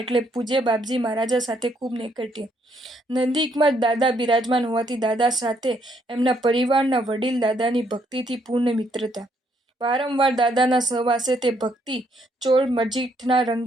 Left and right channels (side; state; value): both; normal; correlation 0.71